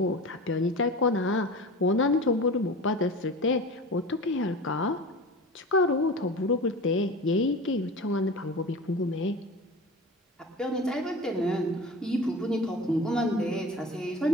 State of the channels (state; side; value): normal; both; correlation 0.33